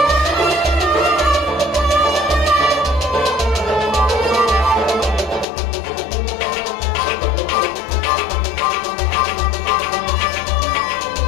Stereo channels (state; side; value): drops out; right; at 5.5 s